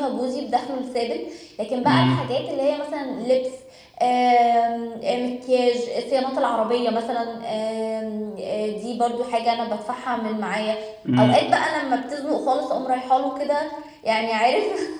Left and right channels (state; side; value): identical; both; correlation 1.00